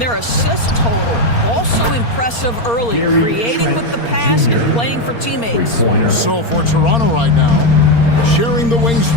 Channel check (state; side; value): late; right; 4.3 ms